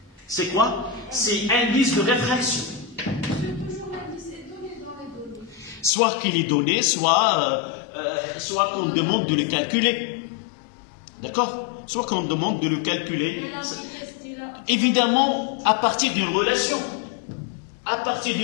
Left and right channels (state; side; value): drops out; right; at 5.9 s